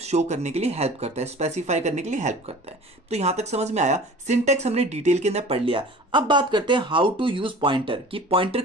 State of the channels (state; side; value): normal; both; correlation 0.43